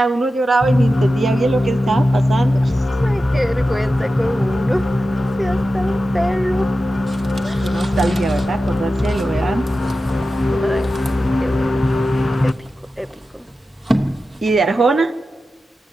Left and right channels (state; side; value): normal; both; correlation 0.93